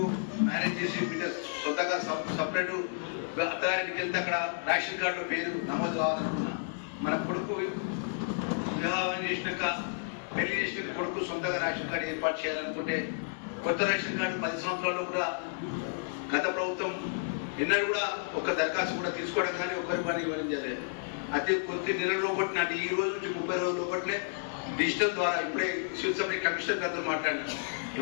మ్యారేజ్ చేసి బిడ్డ సొంతగా సపరేట్ అత్తగారికి వెళ్తే అక్కడ రేషన్ కార్డులో పేరు నమోదు కావాలనుకున్నా, మన కొడుకు వివాహం చేసినాక పెళ్లి చేసిన కొడుకు సొంతగా రేషన్ కార్డు ఏర్పాటు చేయాలనుకుంటే కొత్త రేషన్ కార్డు 10 సంవత్సరాల్లో కూడా గత ప్రభుత్వం ఎన్నడూ కూడా ఒక దరఖాస్తు కూడా తీసుకోవడం కానీ ఒకరి పని ఇవ్వడం జరిగేది. అదే కొద్ది నెలల లోపటి నాటి ఈ రోజు నుంచి 30 రోజుల లోపట్లే డిజిటల్ ద్వారా ఇప్పుడే శివసభ కమిషనర్ గారితో మాట్లాడినారు.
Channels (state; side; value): silent; right; 55 dB below the other